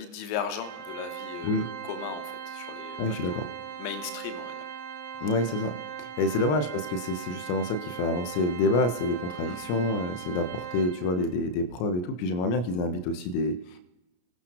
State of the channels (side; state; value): right; late; 33 ms